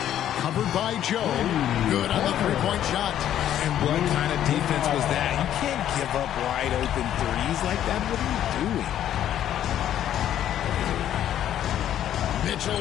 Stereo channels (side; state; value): right; quieter; 11.1 dB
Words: Covered by Joe. Good on the three-point shot. And what kind of defense was that? You can't give up wide open threes like that. What are you doing? Mitchell